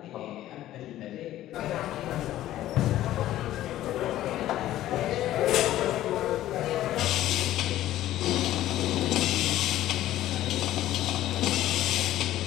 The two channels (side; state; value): right; quieter; 13.9 dB